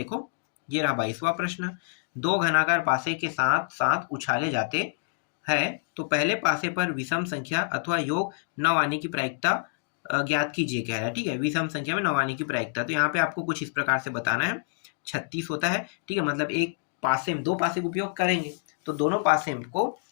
ये रहा 22वां प्रश्न। दो घनाकार पासे के साथ साथ उछाले जाते हैं, तो पहले पासे पर विषम संख्या अथवा योग 9 आने की प्रायिकता ज्ञात कीजिए कह रहा है, ठीक है। विषम संख्या में 9 आने की प्रायिकता, तो यहाँ पे आपको कुछ इस प्रकार से बताना है। 36 होता है, ठीक है, मतलब एक पासे में, दो पासे का उपयोग करेंगे, तो दोनों पासे को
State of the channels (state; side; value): silent; right; digital silence